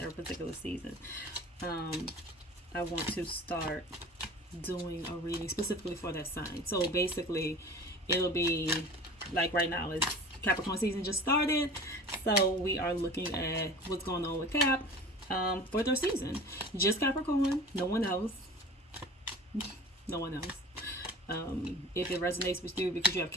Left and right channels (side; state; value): both; normal; correlation 0.40